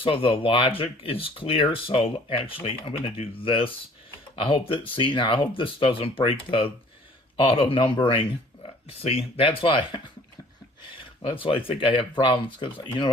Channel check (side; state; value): both; normal; correlation 0.54